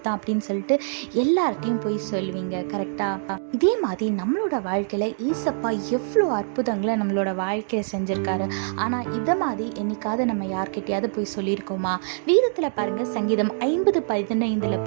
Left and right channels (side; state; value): left; silent; digital silence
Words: தான் அப்படின்னு சொல்லிட்டு எல்லார்ட்டையும் போய் சொல்லுவீங்க. கரெக்டாக? இதே மாதிரி நம்மளோட வாழ்க்கையில் ஏசப்பா எவ்வளோ அற்புதங்களை நம்மளோட வாழ்க்கையை செஞ்சுருக்காரு. ஆனால் இதை மாதிரி என்னைக்காவது நம்ம யார்கிட்டையாவது போய் சொல்லியிருக்கோமா? வீரத்தில் பாருங்கள், சங்கீதம் 50:15